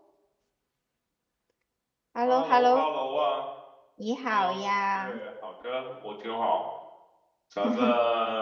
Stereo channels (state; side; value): identical; both; correlation 1.00